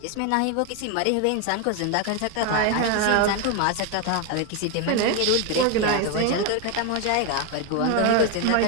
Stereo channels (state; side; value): different; both; correlation 0.01